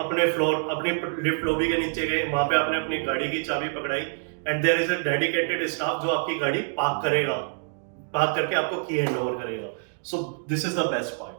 फ्लोर, अपनी लिफ्ट लॉबी के नीचे गए, वहां पे आपने अपनी गाड़ी की चाबी पकड़ाई and there is a dedicated staff जो आपकी गाड़ी पार्क करेगा, पार्क करके आपको की हैंड ओवर करेगा। So this is the best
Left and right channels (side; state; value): left; silent; 61 dB below the other